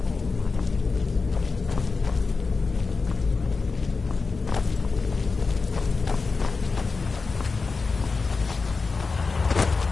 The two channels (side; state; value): right; quieter; 4.3 dB